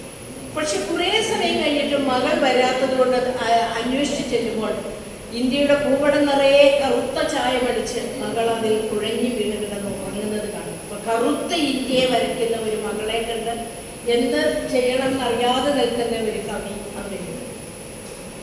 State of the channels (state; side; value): identical; both; correlation 1.00